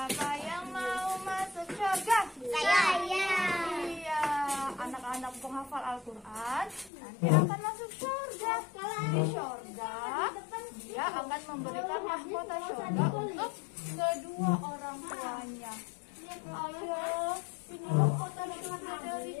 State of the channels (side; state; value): right; drops out; at 6.9 s